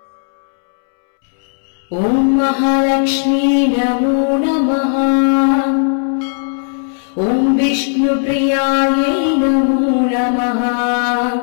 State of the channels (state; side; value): silent; right; 69 dB below the other